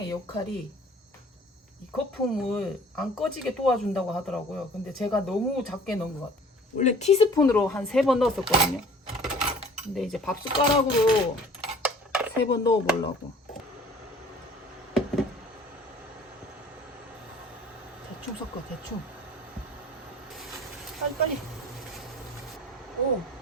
역할이 이 거품을 안 꺼지게 도와준다고 하더라고요. 근데 제가 너무 작게 넣은 것 같아요. 원래 티스푼으로 한 3번 넣었었거든요. 근데 이제 밥 숟가락으로 3번 넣어보려고. 대충 섞어, 대충. 빨리.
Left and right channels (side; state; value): both; normal; correlation 0.50